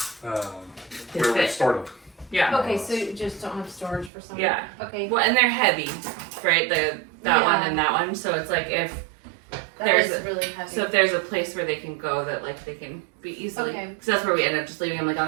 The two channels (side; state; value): left; drops out; at 4.1 s